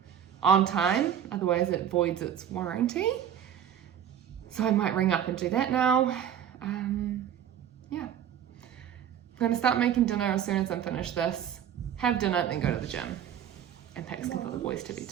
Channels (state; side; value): quieter; left; 9.5 dB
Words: on time, otherwise it voids its warranty. So I might ring up and do that now. Yeah. I'm going to start making dinner as soon as I'm finished this, have dinner, then go to the gym. And Pax can put the boys to bed